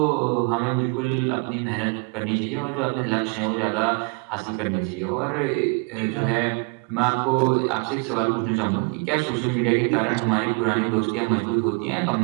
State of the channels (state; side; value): quieter; left; 33.5 dB